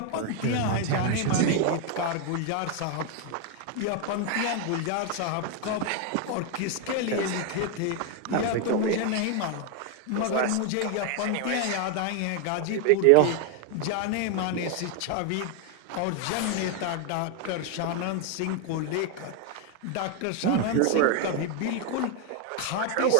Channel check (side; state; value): both; different; correlation 0.00